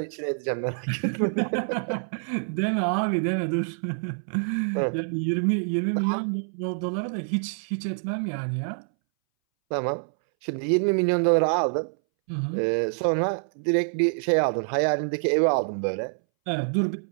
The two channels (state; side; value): silent; left; 61 dB below the other